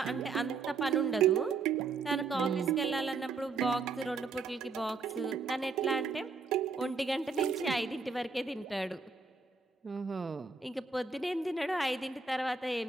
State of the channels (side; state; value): left; quieter; 4.5 dB